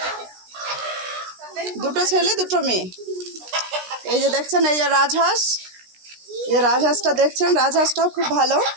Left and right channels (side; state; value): left; late; 16 ms